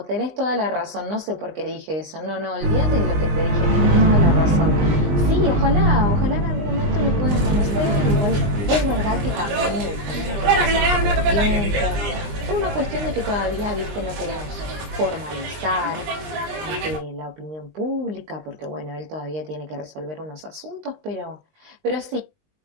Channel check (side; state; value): left; late; 20 ms